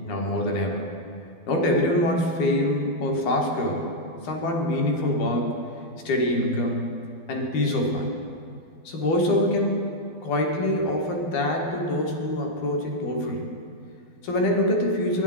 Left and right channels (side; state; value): right; late; 12 ms